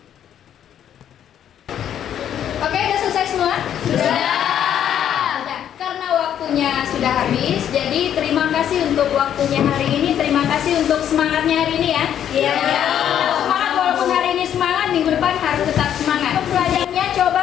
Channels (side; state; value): right; quieter; 9.9 dB